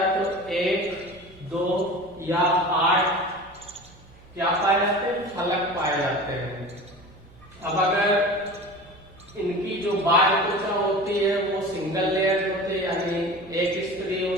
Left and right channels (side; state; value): right; noise; hum, 25 dB below the sound